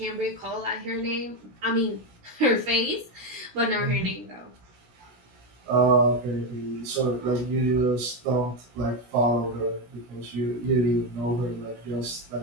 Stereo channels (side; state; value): left; late; 16 ms